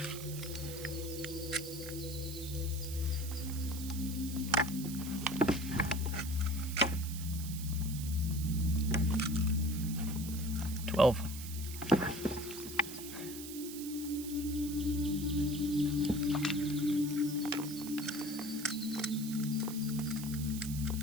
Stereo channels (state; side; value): noise; right; hiss, 10 dB below the sound